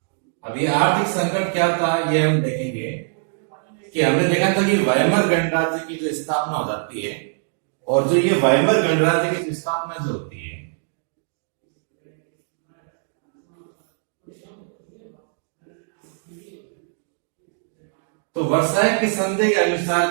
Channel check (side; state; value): left; silent; digital silence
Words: अब ये आर्थिक संकट क्या था ये हम देखेंगे कि हमने देखा था कि वाइमर गणराज्य की जो स्थापना हो जाती है और जो ये वाइमर गणराज्य की स्थापना जो होती है तो वर्साय की संधि के अनुसार